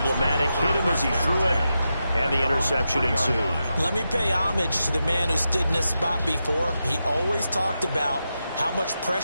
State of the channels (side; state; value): both; inverted; correlation -0.88